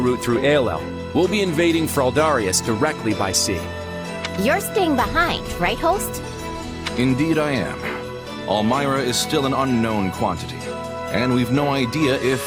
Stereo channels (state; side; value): identical; both; correlation 1.00